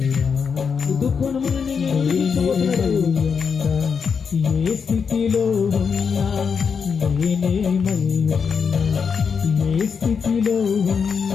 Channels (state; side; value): quieter; right; 6.1 dB